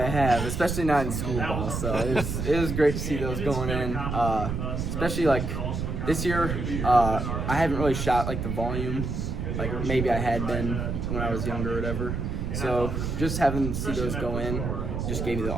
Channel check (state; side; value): noise; right; rumble, 3 dB below the sound